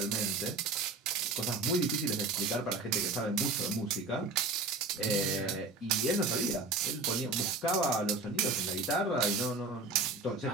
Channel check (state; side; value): quieter; left; 3.5 dB